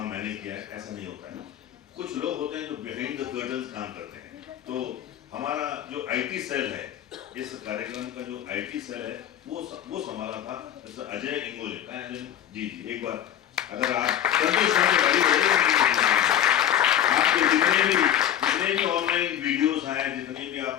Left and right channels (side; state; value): right; quieter; 10.7 dB